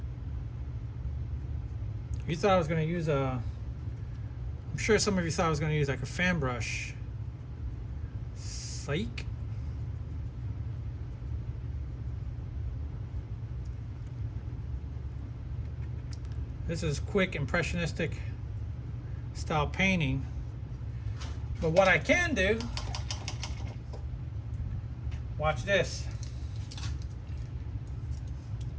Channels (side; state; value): both; identical; correlation 1.00